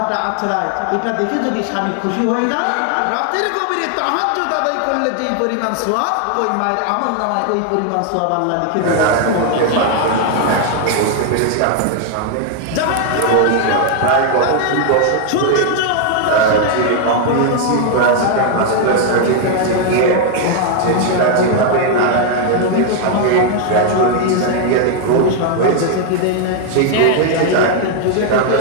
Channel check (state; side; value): different; both; correlation 0.00